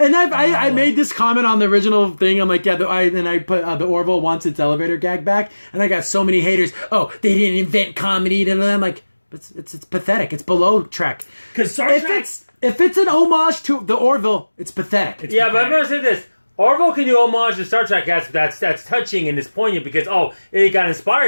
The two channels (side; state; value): both; inverted; correlation -1.00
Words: I made this comment on the original thing. I'm like, yeah, and I put the Orville wants its elevator gag back, and I got so many haters. Oh, they didn't invent comedy, and I'm like, it's pathetic. It's below Trek. Because Star Trek. If it's an homage to the Orville, it's pathetic. Yeah, but I'm going to say this. Orville can do homage to Star Trek. That's touching and it's poignant because, it got